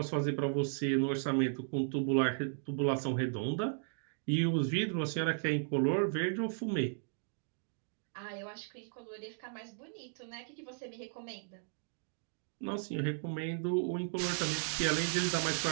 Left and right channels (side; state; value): left; silent; digital silence